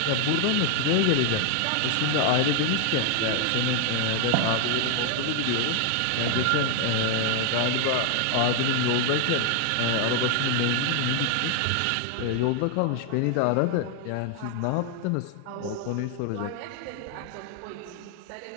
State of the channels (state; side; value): different; both; correlation 0.00